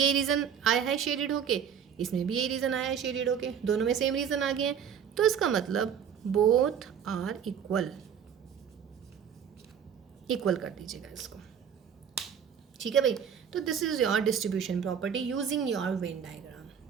रीज़न आया है शेडेड होके, इसमें भी यही रीज़न आया है शेडेड होके, दोनों में सेम रीज़न आ गए हैं। तो इसका मतलब बोथ आर इक्वल, इक्वल कर दीजिएगा इसको, ठीक है भाई। तो this is your distribution property using your Venn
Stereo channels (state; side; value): quieter; left; 8.1 dB